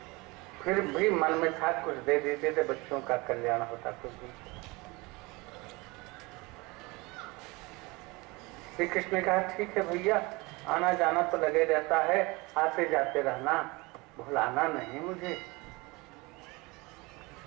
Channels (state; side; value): quieter; left; 24.6 dB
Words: फिर भी मन में था कुछ दे देते थे, बच्चों का कल्याण होता। कुछ भी। श्री कृष्ण ने कहा, ठीक है भैया, आना जाना तो लगे रहता है, आते जाते रहना, भुलाना नहीं मुझे।